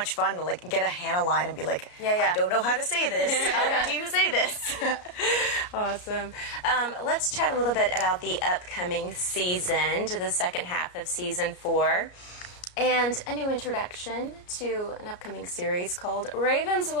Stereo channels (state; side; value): late; right; 33 ms